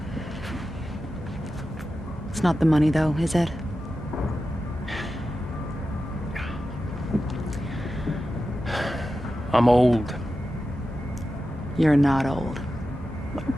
It's not the money, though, is it? I'm old. You're not old.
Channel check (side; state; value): both; normal; correlation 0.92